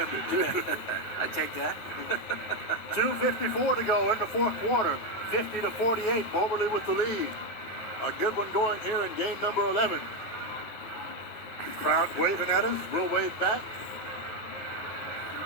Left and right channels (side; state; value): right; late; 9.5 ms